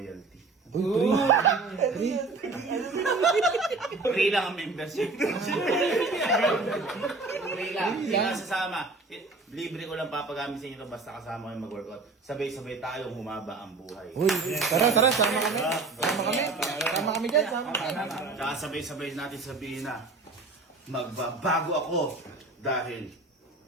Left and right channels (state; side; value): quieter; left; 3.7 dB